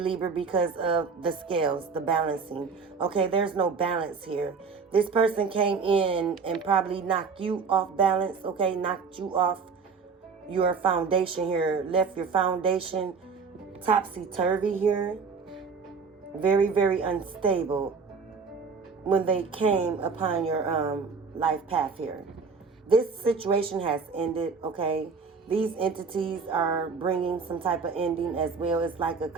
because of the scales, the balancing. Okay, there's no balance here. This person came in and probably knocked you off balance, okay? Knocked you off your foundation here. Left your foundation topsy-turvy here. Very, very unstable when they came upon your life path here. This situation has ended, okay? These entities are bringing some type of ending as well. It's like a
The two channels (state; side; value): quieter; left; 5.1 dB